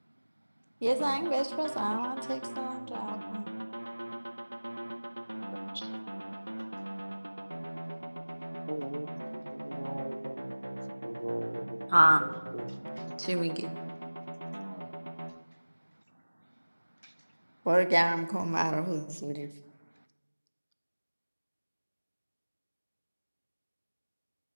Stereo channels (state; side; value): inverted; both; correlation -1.00